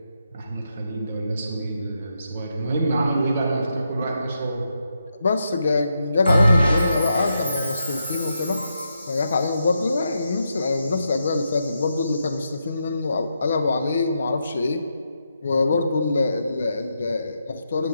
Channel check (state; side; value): inverted; both; correlation -0.83